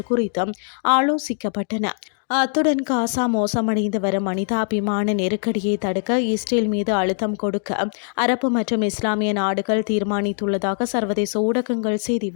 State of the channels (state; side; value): silent; right; digital silence